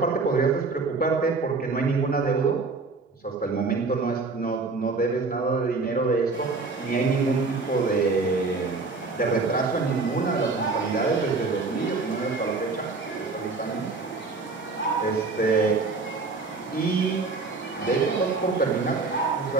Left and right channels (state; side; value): quieter; left; 3.9 dB